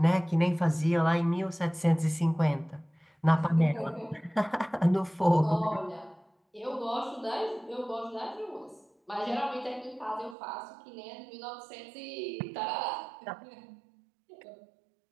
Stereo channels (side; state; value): left; drops out; at 10.4 s